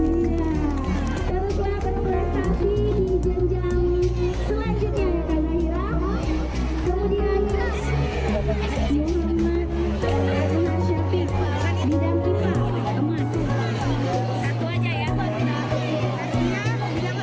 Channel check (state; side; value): identical; both; correlation 1.00